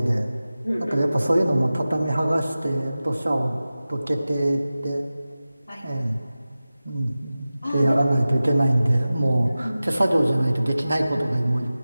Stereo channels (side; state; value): both; inverted; correlation -0.96